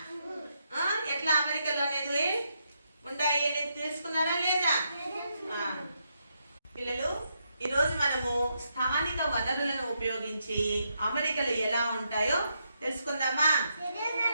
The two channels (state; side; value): inverted; both; correlation -0.80